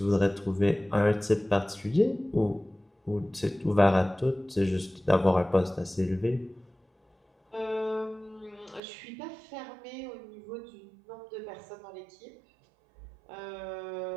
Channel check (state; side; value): drops out; left; at 8.8 s